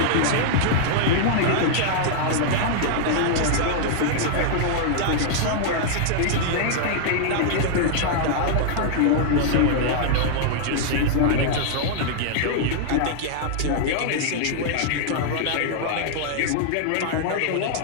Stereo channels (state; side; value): different; both; correlation -0.01